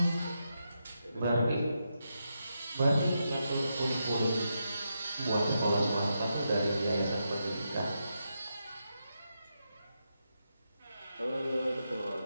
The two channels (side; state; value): both; inverted; correlation -0.85